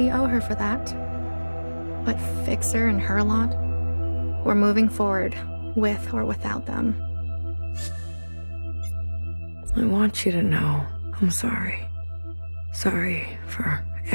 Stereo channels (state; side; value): inverted; both; correlation -1.00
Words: owe her for that. But Fixer and her lot, we're moving forward, with or without them. I want you to know I'm sorry. Sorry for